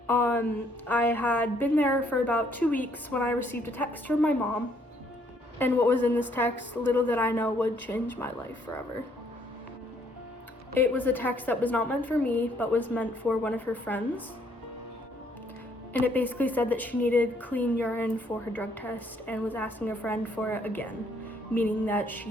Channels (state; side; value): normal; both; correlation 0.67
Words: I had been there for about 2 weeks when I received a text from my mom And what was in this text, little did I know, would change my life forever. It was a text that was not meant for me, but was meant for one of her friends. And it basically said that she needed clean urine for her drug test and was asking a friend for it again, meaning that